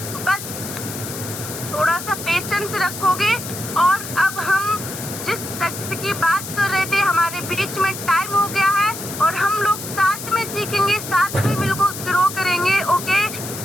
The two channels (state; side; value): noise; left; hiss, 9 dB below the sound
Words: बस थोड़ा सा पेशेंस रखोगे। और अब हम जिस तथ्य की बात कर रहे थे, हमारे बीच में टाइम हो गया है और हम लोग साथ में सीखेंगे, साथ में बिल्कुल ग्रो करेंगे। ओके,